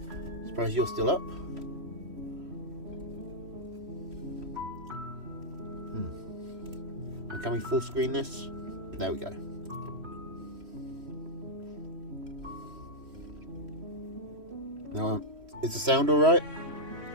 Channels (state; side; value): late; left; 3.1 ms